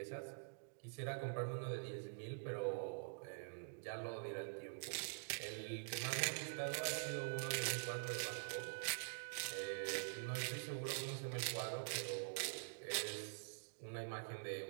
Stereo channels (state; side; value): silent; left; digital silence